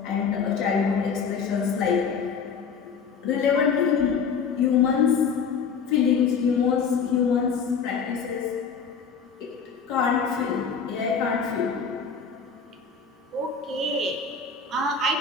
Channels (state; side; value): quieter; right; 5.9 dB